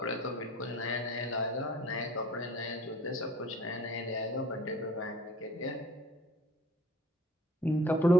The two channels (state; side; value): normal; both; correlation 0.49